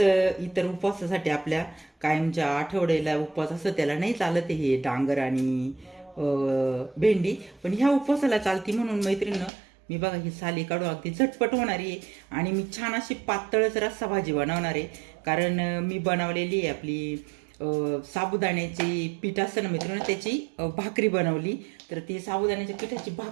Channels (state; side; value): drops out; left; at 9.5 s